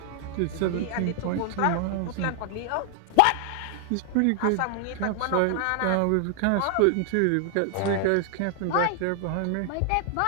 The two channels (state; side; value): different; both; correlation 0.00